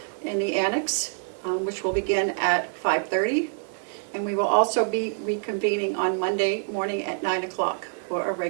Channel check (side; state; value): left; silent; digital silence